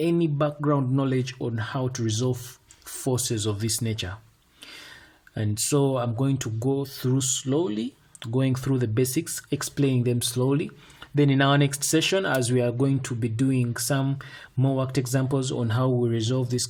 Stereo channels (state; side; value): identical; both; correlation 1.00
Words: background knowledge on how to resolve forces of this nature. And so I'm going to go through slowly, going through the basics, explaining them slowly. Then in our next session, as we are going to be doing some more worked examples on how we resolve these